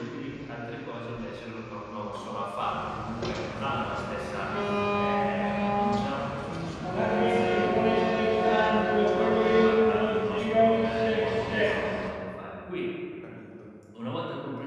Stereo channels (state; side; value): identical; both; correlation 1.00